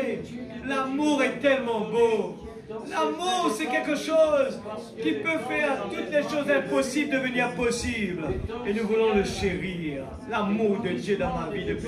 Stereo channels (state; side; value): identical; both; correlation 1.00